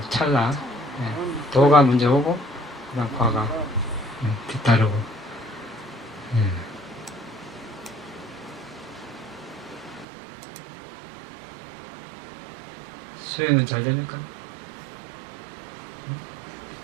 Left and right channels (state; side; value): drops out; left; at 10.1 s